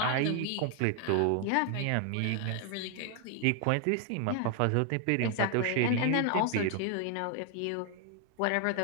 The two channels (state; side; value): different; both; correlation 0.00